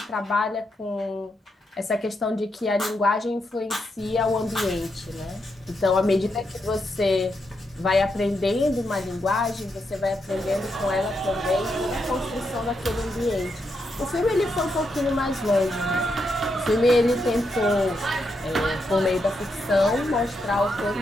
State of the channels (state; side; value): normal; both; correlation 0.82